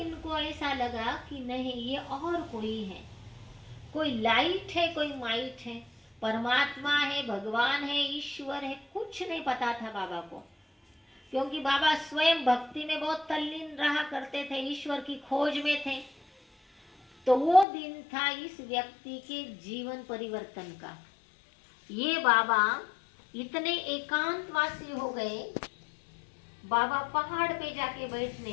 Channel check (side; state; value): right; drops out; at 17.7 s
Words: ऐसा लगा कि नहीं, ये और कोई है, कोई लाइट है, कोई माइट है, परमात्मा है, भगवान है, ईश्वर है। कुछ नहीं पता था बाबा को, क्योंकि बाबा स्वयं भक्ति में बहुत तल्लीन रहा करते थे, ईश्वर की खोज में थे। तो वो दिन था इस व्यक्ति के जीवन परिवर्तन का। ये बाबा इतने एकांतवासी हो गए, बाबा पहाड़ पे जाके